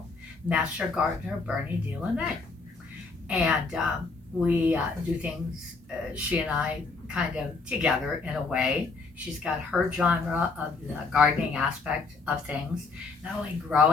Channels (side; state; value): right; quieter; 4.2 dB